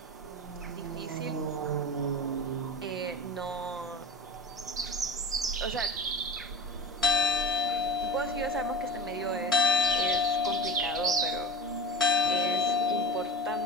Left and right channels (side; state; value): both; normal; correlation 0.33